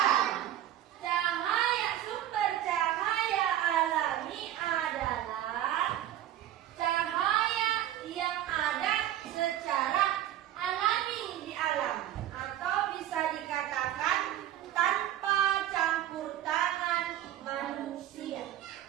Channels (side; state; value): left; quieter; 12.3 dB